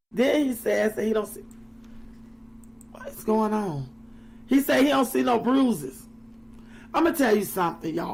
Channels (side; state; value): both; identical; correlation 1.00